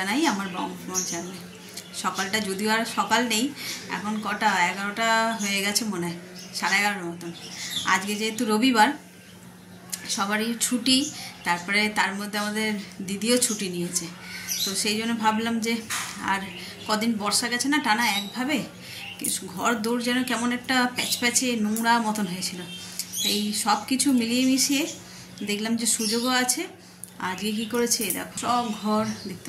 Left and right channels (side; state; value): both; identical; correlation 1.00